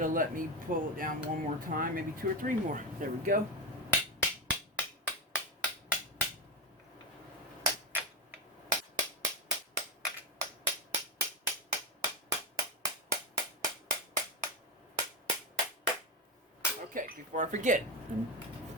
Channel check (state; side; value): normal; both; correlation 0.15